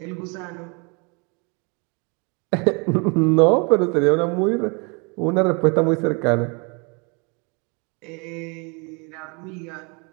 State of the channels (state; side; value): quieter; left; 32.3 dB